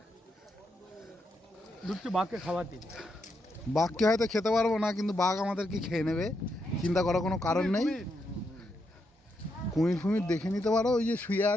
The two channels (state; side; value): normal; both; correlation 0.81